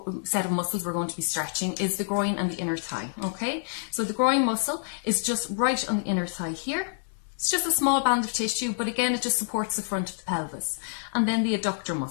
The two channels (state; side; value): silent; right; 60 dB below the other